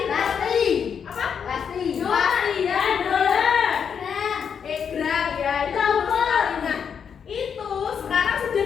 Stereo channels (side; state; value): right; quieter; 7.1 dB